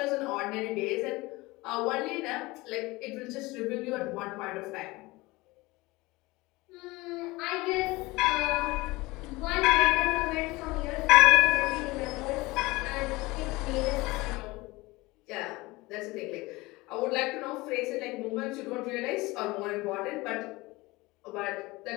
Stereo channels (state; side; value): quieter; right; 21.7 dB